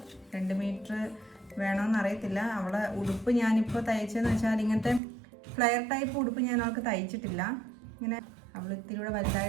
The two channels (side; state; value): left; drops out; at 5.0 s